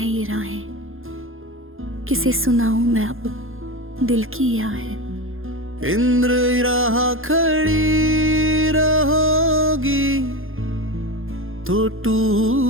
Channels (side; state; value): left; late; 0.60 ms